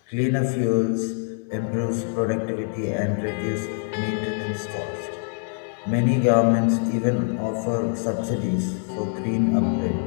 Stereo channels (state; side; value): silent; right; digital silence